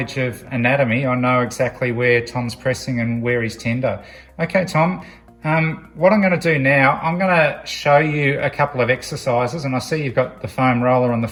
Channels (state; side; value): identical; both; correlation 1.00